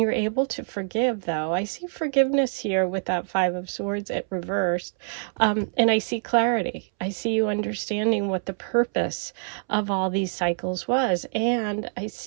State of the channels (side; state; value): left; silent; 61 dB below the other